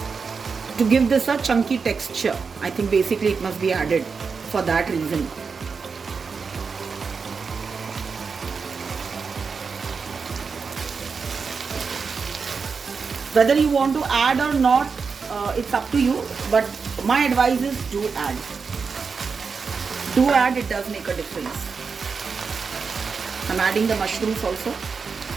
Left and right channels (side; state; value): left; quieter; 5.3 dB